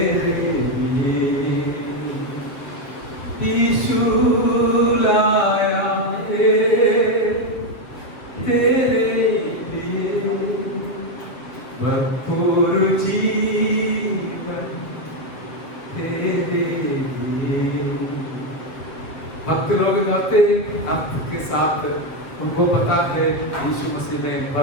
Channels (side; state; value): right; late; 7.3 ms